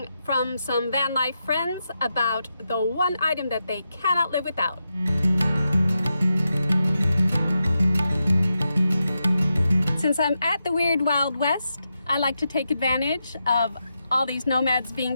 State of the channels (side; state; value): both; inverted; correlation -0.87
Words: from some van life friends about the one item that they cannot live without. Since I'm at the Weird Wild West, I like to take advantage of all these nomads being